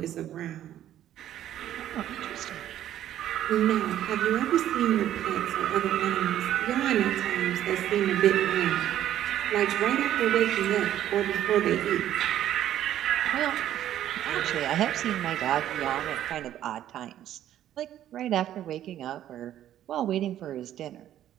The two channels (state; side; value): quieter; left; 11.9 dB